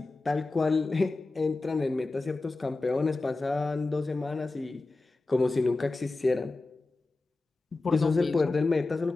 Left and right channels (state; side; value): quieter; right; 3.3 dB